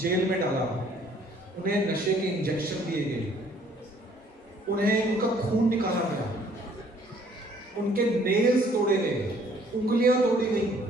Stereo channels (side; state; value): both; normal; correlation 0.60